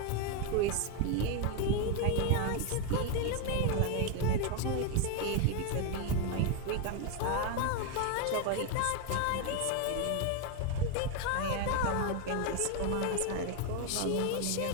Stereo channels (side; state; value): both; different; correlation 0.01